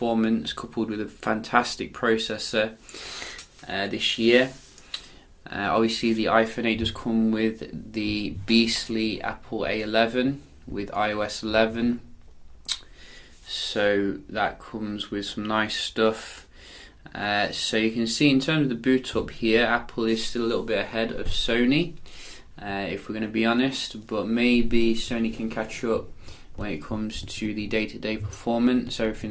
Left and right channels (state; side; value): identical; both; correlation 1.00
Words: coupled with a fantastic processor this year. Obviously the iPhone 8 does come with the beastly Apple A11 with iOS 11, so that comes with some nice stuff. So you can see in terms of the boot up here, Apple is still a little bit ahead of Sony, if we're going to be honest, but maybe Sony can catch up when it comes to the day-to-day performance.